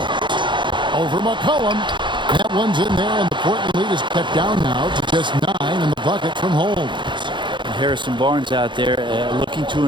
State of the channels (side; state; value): left; late; 0.23 ms